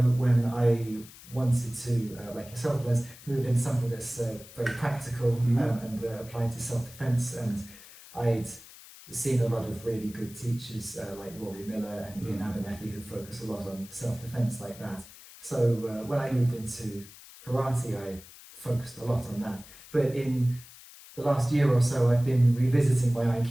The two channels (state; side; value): noise; left; hiss, 19 dB below the sound